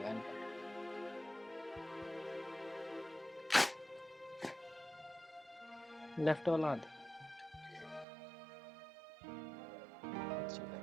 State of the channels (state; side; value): drops out; left; at 8.1 s